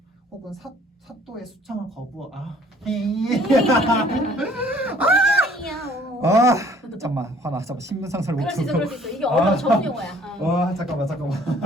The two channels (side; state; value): both; normal; correlation 0.57